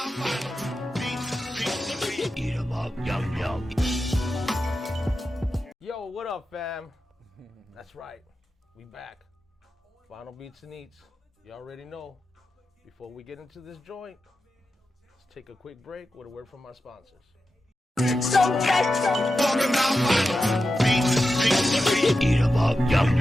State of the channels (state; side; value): normal; both; correlation 0.91